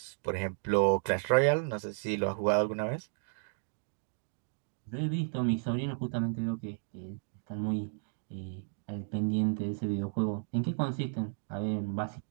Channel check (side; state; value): left; silent; digital silence